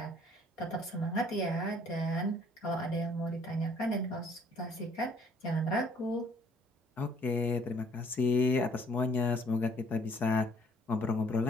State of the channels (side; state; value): both; normal; correlation 0.61